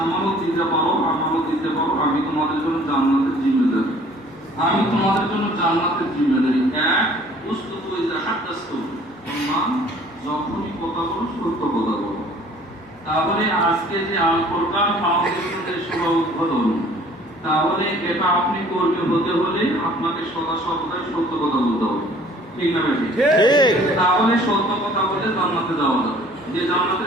দিতে পারো, আমানত দিতে পারো, আমি তোমাদের জন্য জান্নাতের জিম্মেদারি। আমি তোমাদের জন্য জান্নাতের জিম্মেদারি। এক, উসতুতু ইযা হাদাসতু, তোমরা যখনই কথা বলো সত্য কথা বলো। তাহলে আজকে যে আল কোরআন ফাউন্ডেশনের শুভ উদ্বোধন, তাহলে এটা আপনি কর্মী হতে হলে আপনাকে সদা সর্বদাই সত্য কথা বলতে হবে। ঠিক না ভাই? ঠিক। তাহলে সত্য কথা বলে জান্নাতে যাওয়া যাবে। যে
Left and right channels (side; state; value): both; normal; correlation 0.54